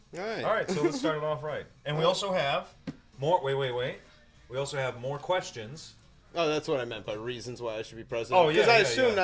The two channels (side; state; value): both; identical; correlation 1.00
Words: right. All right, so let's start it off right. And we also have more. Wait. We also have more questions. Oh, that's what I meant by reasons why I should be president. Oh, yeah, Because I yeah, assumed yeah.